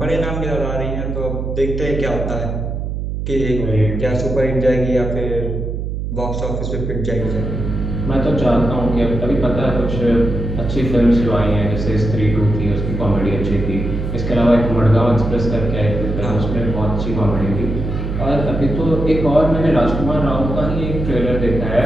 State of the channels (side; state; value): right; noise; hum, 4 dB below the sound